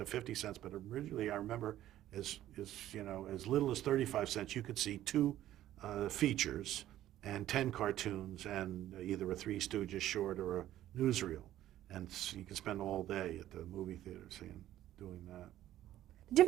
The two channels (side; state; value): left; quieter; 13.2 dB